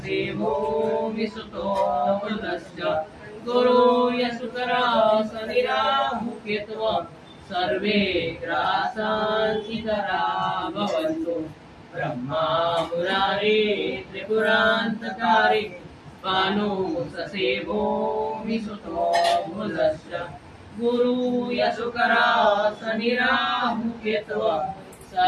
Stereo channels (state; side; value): identical; both; correlation 1.00